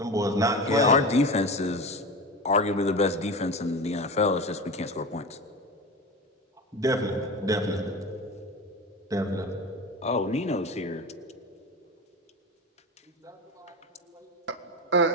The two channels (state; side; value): normal; both; correlation 0.27